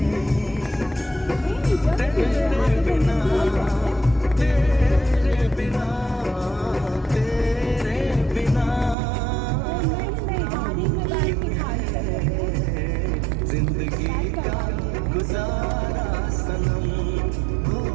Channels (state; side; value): drops out; left; at 9.0 s